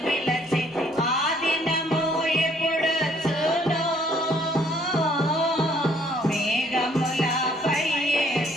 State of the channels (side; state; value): both; normal; correlation 0.63